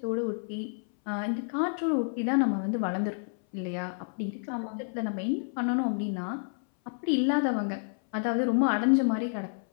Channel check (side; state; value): right; silent; 58 dB below the other